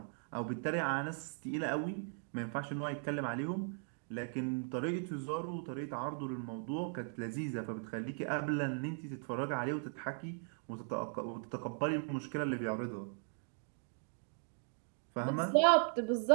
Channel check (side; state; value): left; silent; 52 dB below the other